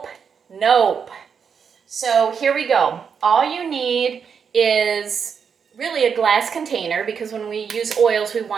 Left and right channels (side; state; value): left; quieter; 6.6 dB